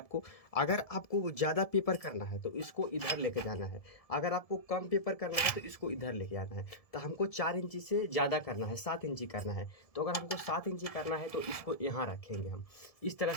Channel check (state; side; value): late; right; 1.7 ms